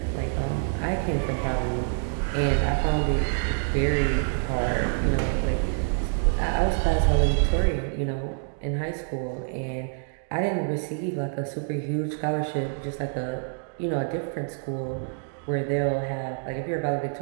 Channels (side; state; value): left; silent; digital silence